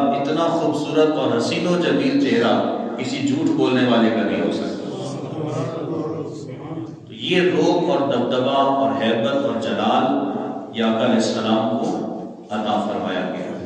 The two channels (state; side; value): identical; both; correlation 1.00